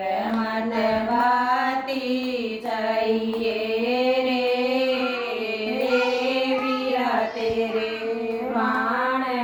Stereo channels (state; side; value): identical; both; correlation 1.00